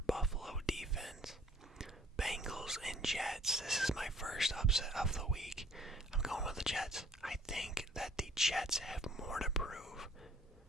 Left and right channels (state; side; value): normal; both; correlation 0.57